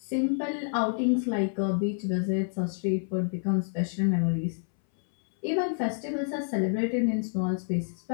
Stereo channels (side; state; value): right; silent; 59 dB below the other